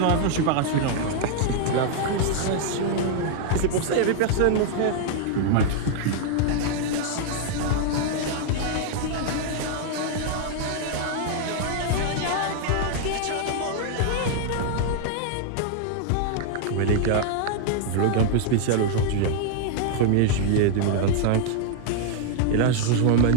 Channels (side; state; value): both; different; correlation -0.01